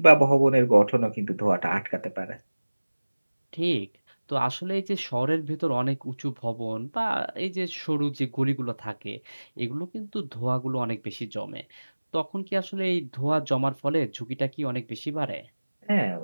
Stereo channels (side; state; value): both; inverted; correlation -1.00